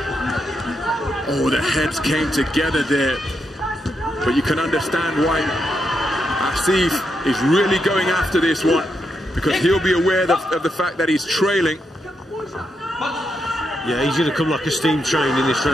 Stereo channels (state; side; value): normal; both; correlation 0.82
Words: Oh, the heads came together there. But you can understand why Asif is really going after this one, because he'll be aware of the fact that he's trailing. Yeah, he's going to come like a steam train in this